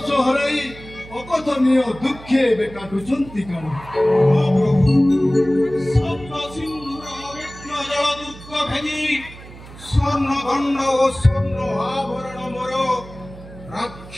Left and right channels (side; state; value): right; noise; hum, 17 dB below the sound